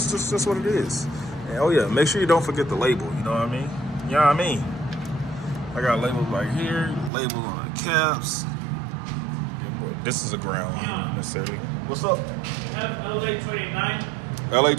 just what it is. And oh yeah, make sure you don't forget the label. You know what I mean? You know what I mean? I got labels right here, labels on the caps. This is a ground, not necessarily. What's up? Have LA 29. LA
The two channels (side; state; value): left; drops out; at 7.1 s